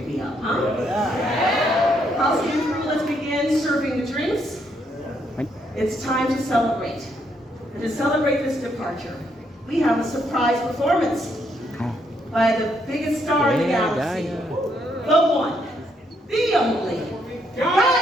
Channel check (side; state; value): both; normal; correlation 0.74